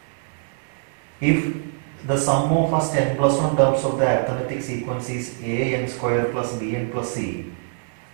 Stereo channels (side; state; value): left; silent; digital silence